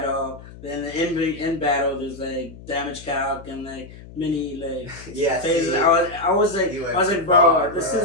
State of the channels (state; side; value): noise; left; hum, 17 dB below the sound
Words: then in battle there's like damage calc and like mini like Yeah, phases. see, I was like, you went bro, too far, this bro.